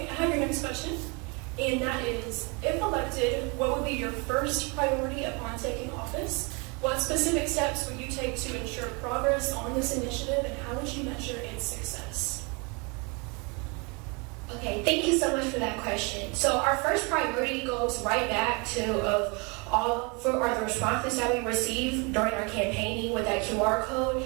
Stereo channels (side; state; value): left; quieter; 30.8 dB